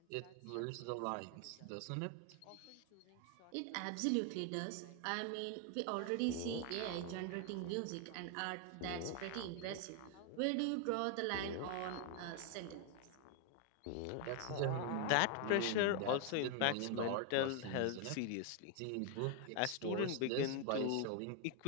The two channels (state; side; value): different; both; correlation 0.01